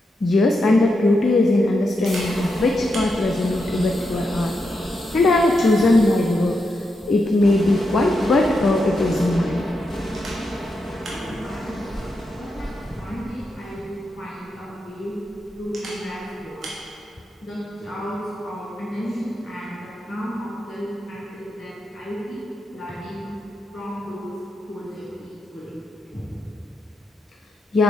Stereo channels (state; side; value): normal; both; correlation 0.85